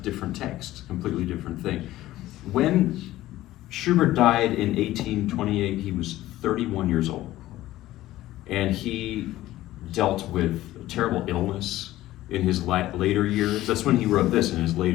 text, completely different thing. When Schubert died in 1828, he was 31 years old. And he dealt with a terrible illness in his later years. That's when he wrote this, in his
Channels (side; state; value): right; quieter; 15.5 dB